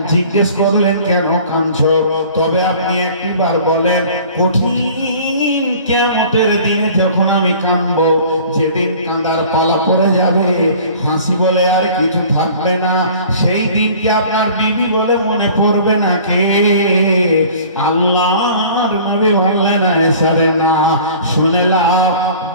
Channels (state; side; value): inverted; both; correlation -0.47